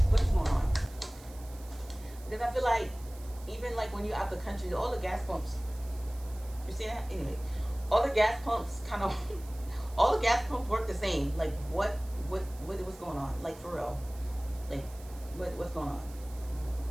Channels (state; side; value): noise; right; hiss, 21 dB below the sound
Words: What is going on? Because I feel like even like when you're out the country, all the gas pumps. You see that? Anyway, all the gas pumps kind of, all the gas pumps work the same. Like what's going on? Like for real, like what's going on?